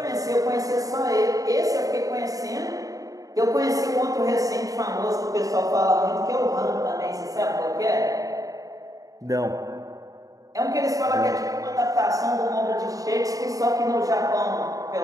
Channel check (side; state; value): left; late; 0.17 ms